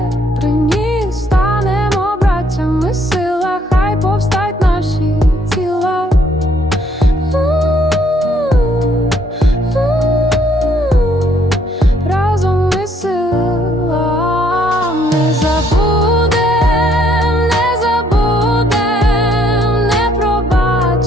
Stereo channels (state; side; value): normal; both; correlation 0.67